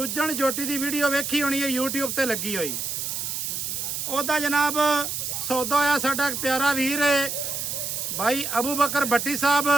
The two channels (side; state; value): right; noise; hiss, 3 dB below the sound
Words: ਜੋਟੀ ਦੀ ਵੀਡੀਓ ਵੇਖੀ ਹੋਣੀ ਹੈ, YouTube ਤੇ ਲੱਗੀ ਹੋਈ। ਉਹਦਾ ਜਨਾਬ ਸੌਦਾ ਹੋਇਆ ਸਾਡਾ ਪਿਆਰਾ ਵੀਰ ਹੈ ਭਾਈ ਅਬੂ ਬਕਰ ਭੱਟੀ ਸਾਹਿਬ